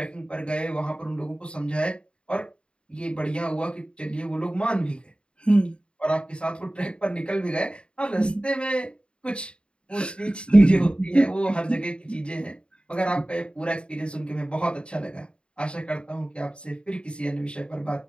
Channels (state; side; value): late; right; 0.054 ms